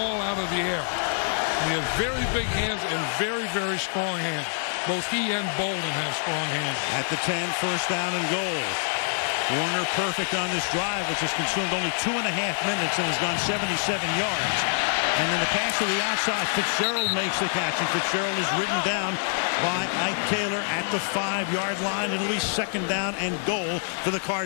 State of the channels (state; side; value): silent; right; digital silence